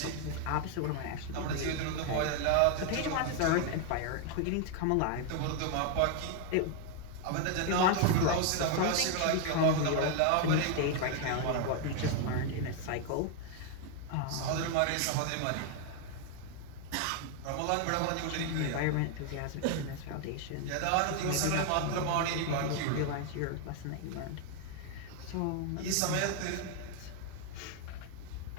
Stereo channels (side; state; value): both; different; correlation 0.00